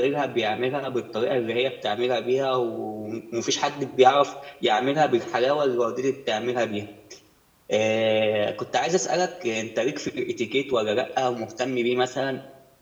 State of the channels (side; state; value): both; identical; correlation 1.00